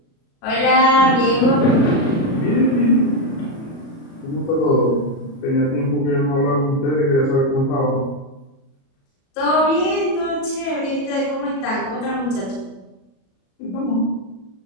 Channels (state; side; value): late; right; 37 ms